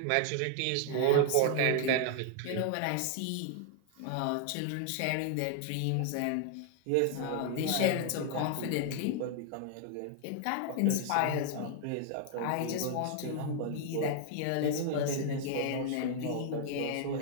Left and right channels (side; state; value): both; different; correlation 0.00